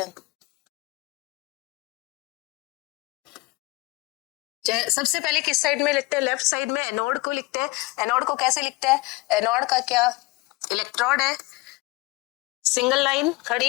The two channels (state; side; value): quieter; right; 22.9 dB